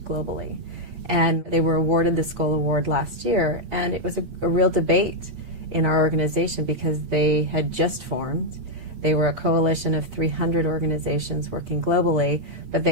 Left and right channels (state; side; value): late; left; 8.5 ms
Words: globally. And they were awarded the Skoll Award last year, and it was a real debate in our organization because they had just formed. They were a coalition of 300 organizations working globally, but